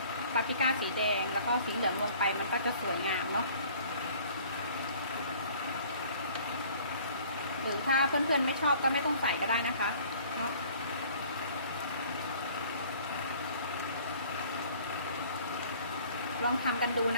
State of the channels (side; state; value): both; inverted; correlation -0.52